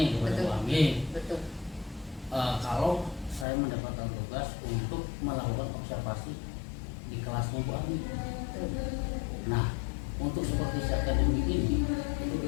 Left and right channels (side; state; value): right; drops out; at 3.5 s